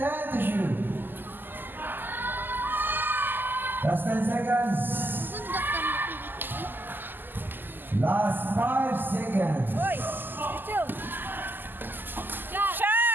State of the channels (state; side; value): late; left; 0.091 ms